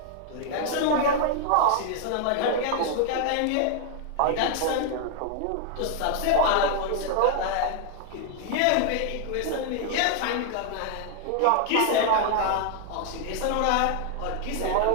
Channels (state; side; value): different; both; correlation 0.00